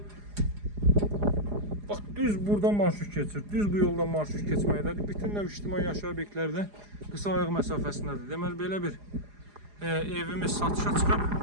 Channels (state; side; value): late; left; 4.9 ms